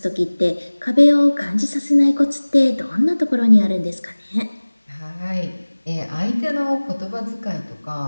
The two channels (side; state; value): both; inverted; correlation -1.00